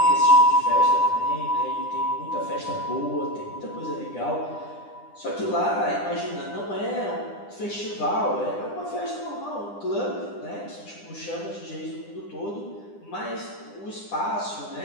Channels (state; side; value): late; right; 9.9 ms